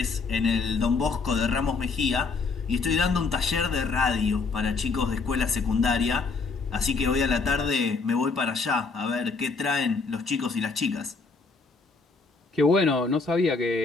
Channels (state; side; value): quieter; right; 4.4 dB